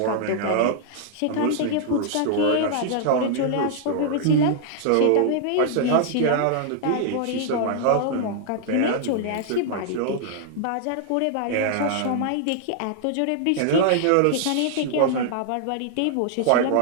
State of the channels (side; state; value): both; different; correlation -0.01